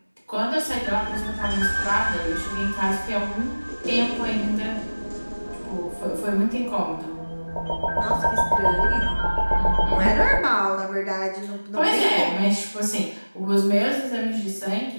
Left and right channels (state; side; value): inverted; both; correlation -1.00